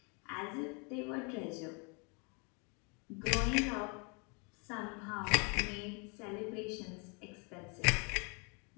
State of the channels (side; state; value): right; quieter; 34.3 dB